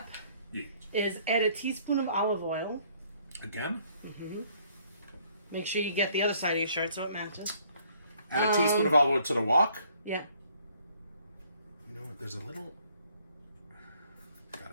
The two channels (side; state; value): both; inverted; correlation -0.62